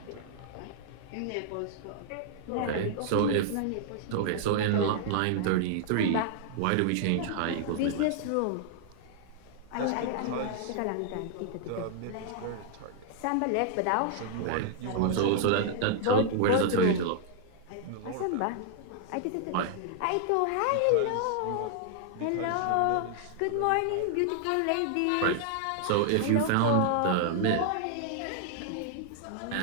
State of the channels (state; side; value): different; both; correlation -0.01